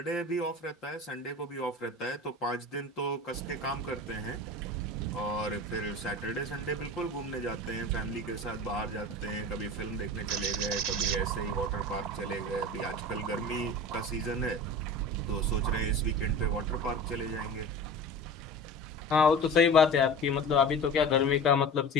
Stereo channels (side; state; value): both; normal; correlation 0.35